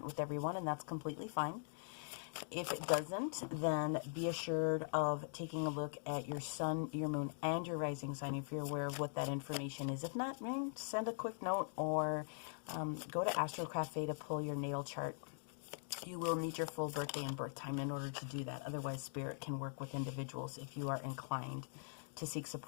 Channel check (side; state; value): right; silent; digital silence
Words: with everyone, and that's completely fine. If it doesn't, then be assured of taking a look at your sun, your moon, and your rising sign if you're aware of what that information is. If not, send a quick note or go to Astro Cafe to pull your natal chart. You will need your full birthday and birth time in order to do that. Otherwise, Spirit can work with individuals if you are inclined to seek